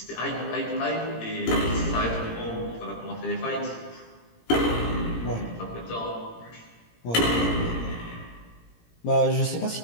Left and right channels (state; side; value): late; right; 17 ms